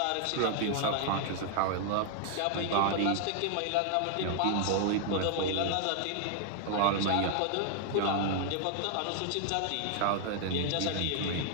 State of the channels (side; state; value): both; different; correlation 0.00